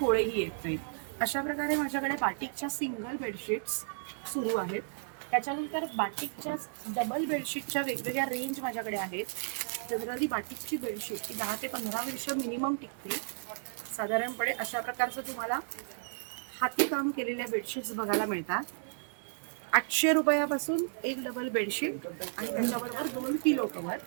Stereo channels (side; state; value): left; silent; 56 dB below the other